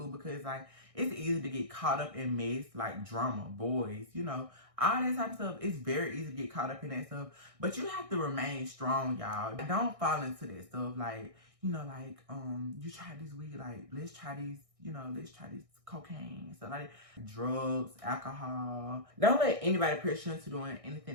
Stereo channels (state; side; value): late; left; 1.6 ms